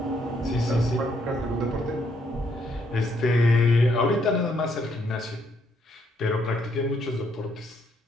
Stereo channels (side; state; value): both; normal; correlation 0.72